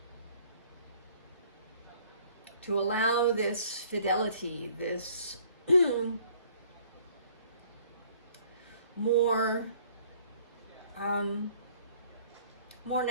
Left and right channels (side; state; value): both; inverted; correlation -0.58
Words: To allow this fidelity, this more